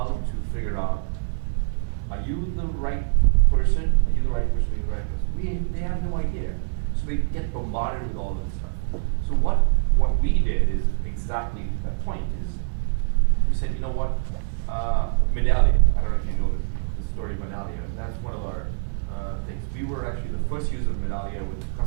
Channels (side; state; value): left; silent; 62 dB below the other